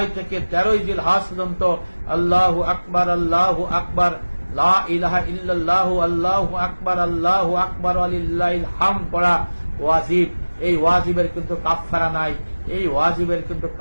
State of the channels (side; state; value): both; inverted; correlation -1.00